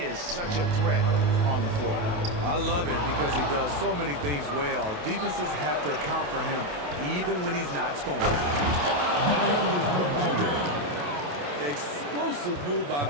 is such a threat on the floor. I love it because he does so many things well. Defenses have to account for him even when he's not scoring. And Adebayo throws it down. Explosive move by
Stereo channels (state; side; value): late; left; 28 ms